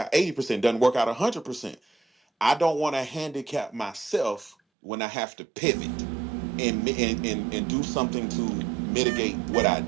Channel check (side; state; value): left; drops out; at 4.5 s